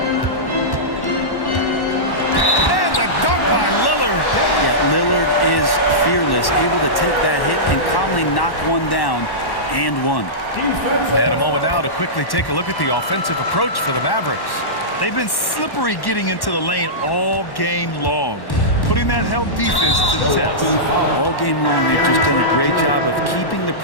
the dunk by Lillard. Yeah, Lillard is fearless, able to take that hit and calmly knock one down and one. And a moment now to quickly take a look at the offensive approach for the Mavericks. They've been slippery getting into the lane all game long. putting that help defense to the test. All game long, they've just done a great job of keeping the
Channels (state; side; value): late; right; 1.1 ms